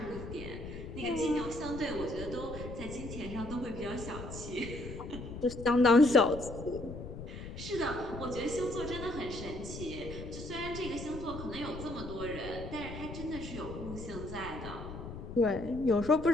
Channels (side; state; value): left; noise; rumble, 10 dB below the sound